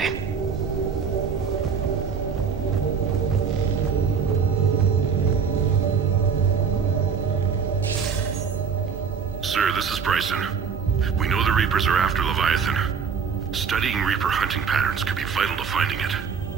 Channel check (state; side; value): quieter; left; 6.3 dB